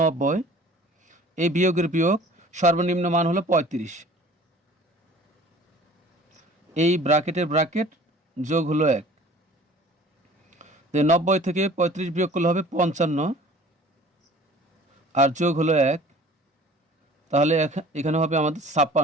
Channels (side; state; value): both; normal; correlation 0.48